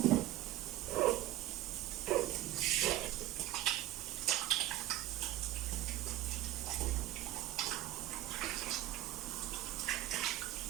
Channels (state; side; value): quieter; left; 15.1 dB